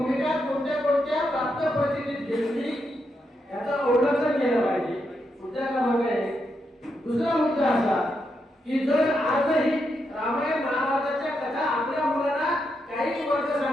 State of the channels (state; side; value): normal; both; correlation 0.82